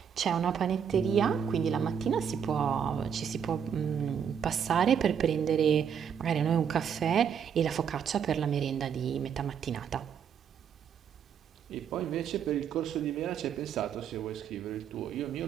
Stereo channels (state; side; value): quieter; left; 7.8 dB